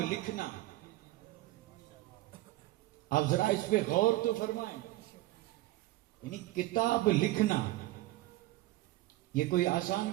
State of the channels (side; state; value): left; quieter; 17.4 dB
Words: لکھنا، آپ ذرا اس پہ غور تو فرمائیں، یعنی کتاب لکھنا یہ کوئی آسان